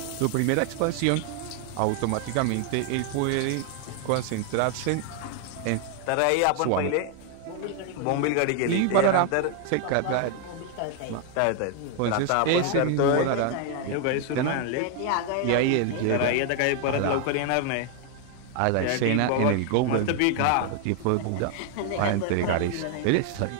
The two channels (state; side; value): different; both; correlation 0.00